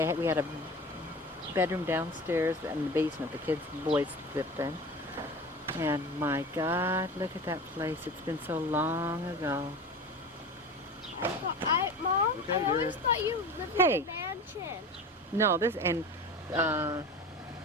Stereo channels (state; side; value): normal; both; correlation 0.33